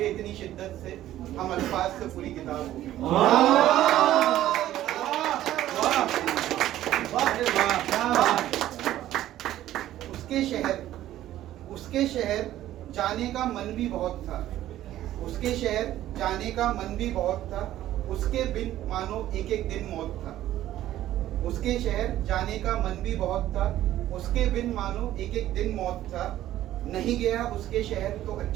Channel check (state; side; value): quieter; left; 13.4 dB